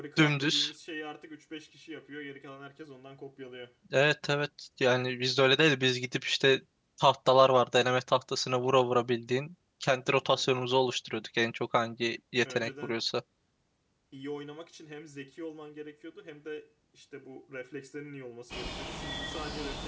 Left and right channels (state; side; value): identical; both; correlation 1.00